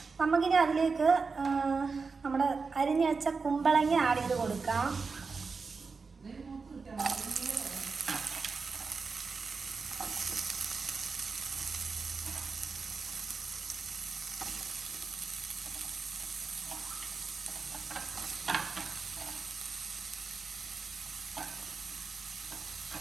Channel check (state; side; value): quieter; left; 4.7 dB